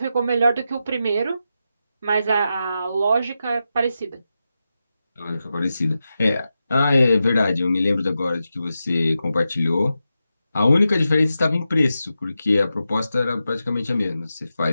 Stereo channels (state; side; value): inverted; both; correlation -0.90